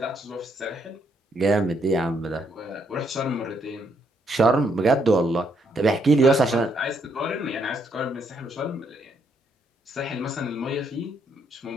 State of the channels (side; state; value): both; normal; correlation 0.73